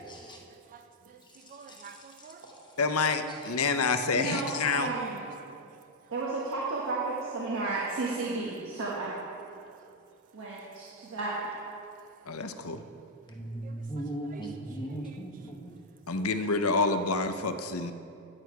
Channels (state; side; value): normal; both; correlation -0.03